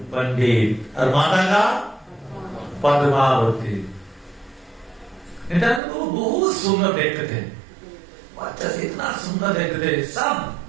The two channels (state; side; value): drops out; left; at 5.8 s